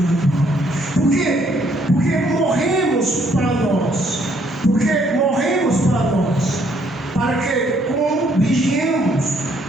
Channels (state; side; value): normal; both; correlation 0.68